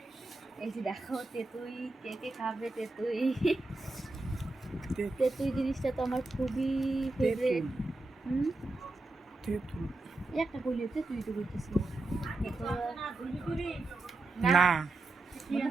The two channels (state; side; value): quieter; left; 3.0 dB